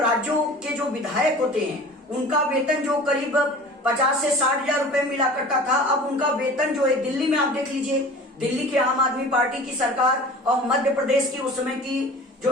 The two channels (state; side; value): normal; both; correlation 0.41